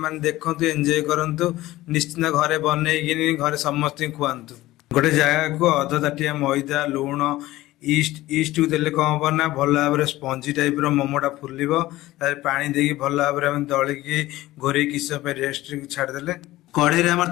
ଦେଖନ୍ତୁ, ଏନ୍ଜୟ କରନ୍ତୁ। ନିଶ୍ଚିନ୍ତ ଘରେ ବନେଇକିନି ଘରେ ସମସ୍ତଙ୍କୁ ଖୁଆନ୍ତୁ। ଗୋଟେ ଜାଗାକୁ ଅଧ ତାଟିଆ ମଇଦା, ଲୁଣ, ଇଷ୍ଟକୁ ଦେଲେ କ'ଣ ହେବ ନା ଭଲ ଭାବରେ ସ୍ପଞ୍ଜି ଟାଇପ୍ର ମୋମୋଟା ଫୁଲିବ। ତାପରେ ପାଣି ଦେଇକି ଭଲ ଭାବରେ ଆମେ ଦଳିକି ଘୋରେଇକି କିଛି ସମୟ ପାଇଁ ରେଷ୍ଟରେ ଛାଡ଼ିଦେଲେ। କଢ଼େଇରେ ଆମର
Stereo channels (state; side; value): quieter; right; 16.9 dB